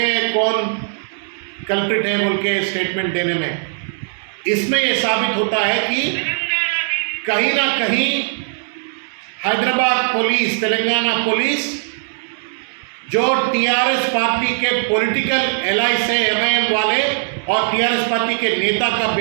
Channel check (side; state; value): left; silent; 63 dB below the other